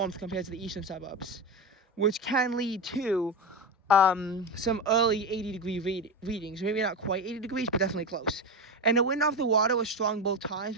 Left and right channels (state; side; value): normal; both; correlation 0.17